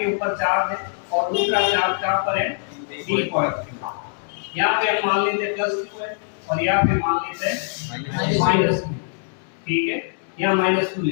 ऊपर चार्ज है और दूसरा चार्ज कहां पर है? B point. यहाँ पे हम मान लेते हैं +2 है और यहाँ पे मान लेते हैं -2। ठीक है, यहाँ -2 ले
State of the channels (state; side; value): silent; right; 64 dB below the other